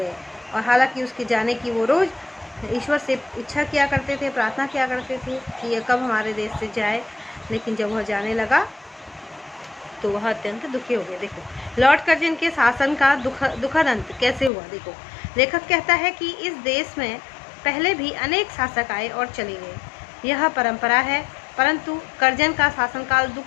और हालांकि उसके जाने की वो रोज़ ईश्वर से इच्छा किया करते थे, प्रार्थना किया करते थे कि ये कब हमारे देश से जाए, लेकिन जब वह जाने लगा तो वह अत्यंत दुखी हो गए। देखो लॉर्ड कर्जन के शासन का दुखद अंत कैसे हुआ। देखो लेखक कहता है कि इस देश में पहले भी अनेक शासक आए और चले गए, यह परंपरा है, परंतु कर्जन का शासनकाल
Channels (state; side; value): drops out; right; at 14.5 s